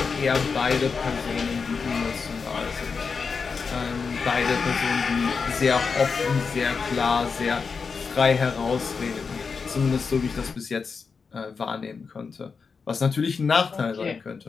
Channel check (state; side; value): quieter; right; 5.2 dB